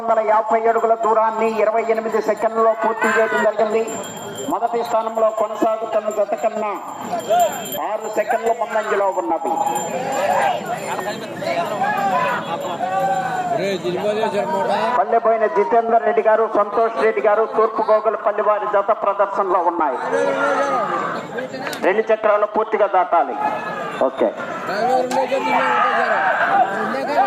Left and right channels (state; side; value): identical; both; correlation 1.00